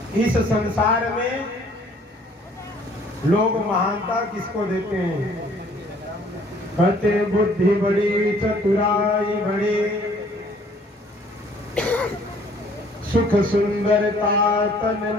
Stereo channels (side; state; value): both; normal; correlation 0.58